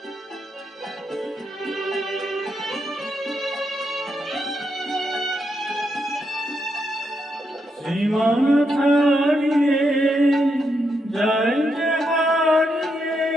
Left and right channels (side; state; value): both; normal; correlation 0.81